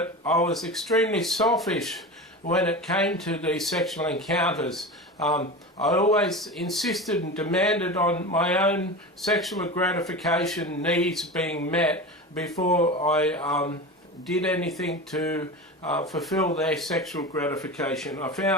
I was extremely selfish when it came to these sexual encounters. I always insisted and demanded on my own sexual gratification needs being met before I did anything to fulfill their sexual gratification. I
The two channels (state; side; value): normal; both; correlation 0.28